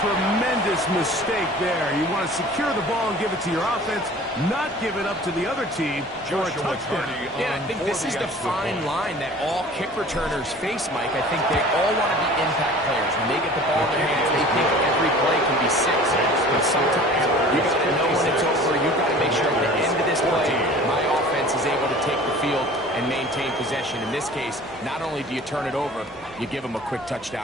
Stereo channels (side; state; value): both; normal; correlation 0.45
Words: tremendous mistake there. You want to secure the ball and give it to your offense, not give it up to the other team for a touchdown. Yeah, I think this is the fine line that all kick returners face, Mike. I think they all want to be impact players. When they get the ball in their hands, they think every play can be 6. But sometimes you got to know when it's over. You've got to make sure at the end of this play, my offense is able to take the field and maintain possession. In this case, not only do you turn it over, you give them a quick